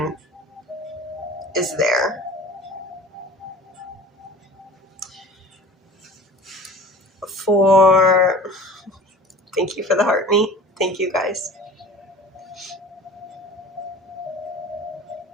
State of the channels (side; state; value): both; normal; correlation 0.42